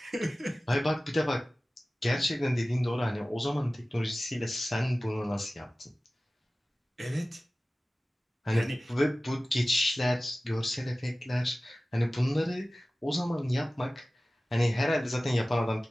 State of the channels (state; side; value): normal; both; correlation 0.97